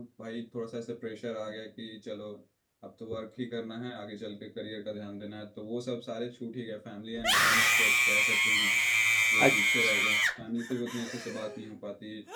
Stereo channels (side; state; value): both; identical; correlation 1.00